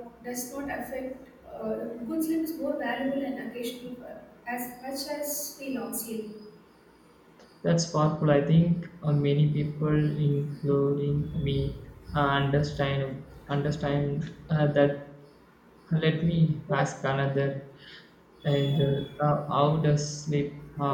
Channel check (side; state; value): both; identical; correlation 1.00